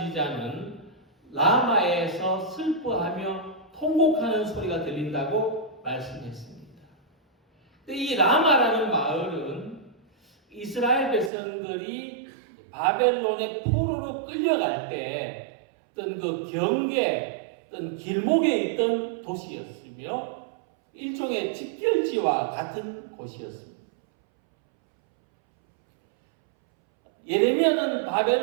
라마에서 슬퍼하며 통곡하는 소리가 들린다고 말씀했습니다. 이 라마라는 마을은 이스라엘 백성들이 바벨론의 포로로 끌려갈 때 어떤 그 경계, 어떤 길목에 있던 도시였으며 일종의 집결지와 같은 곳이었습니다. 예레미야는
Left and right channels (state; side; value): drops out; left; at 11.3 s